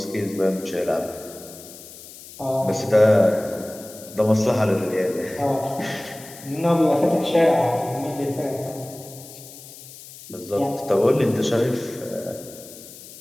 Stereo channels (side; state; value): left; noise; hiss, 17 dB below the sound